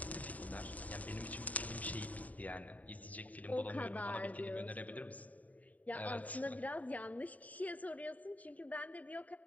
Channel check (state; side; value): late; right; 0.072 ms